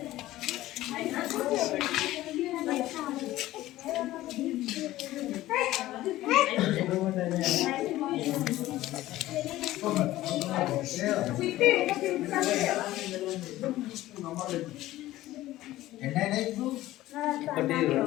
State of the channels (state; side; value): quieter; right; 15.8 dB